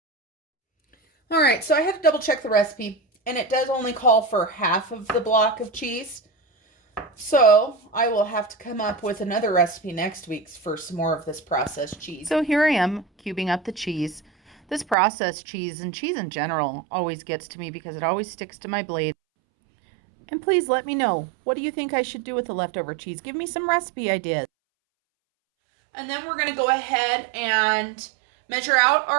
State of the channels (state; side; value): drops out; left; at 15.0 s